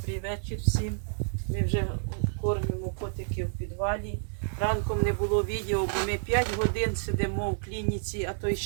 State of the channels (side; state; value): left; silent; digital silence